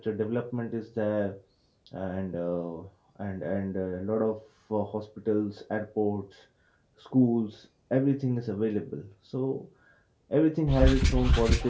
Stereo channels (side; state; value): both; identical; correlation 1.00